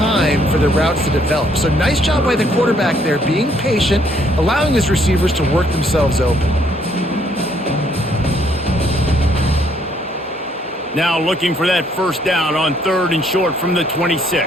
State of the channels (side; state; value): both; normal; correlation 0.67